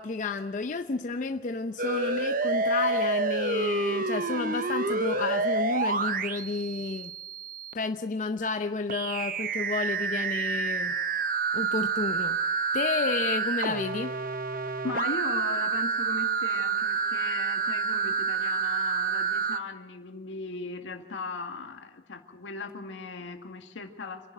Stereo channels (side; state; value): both; normal; correlation -0.04